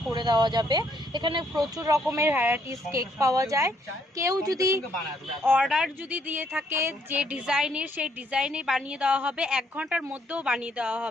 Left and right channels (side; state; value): both; normal; correlation 0.70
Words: করে দেওয়া যাবে। এখানে প্রচুর রকমের ভ্যারাইটিস কেক পাওয়া যায়। কেউ যদি অর্ডার যদি দিয়ে থাকে যে ডিজাইনের, সেই ডিজাইনে বানিয়ে দেওয়া হবে, 1 ঘন্টার মধ্যেও বানিয়ে দেওয়া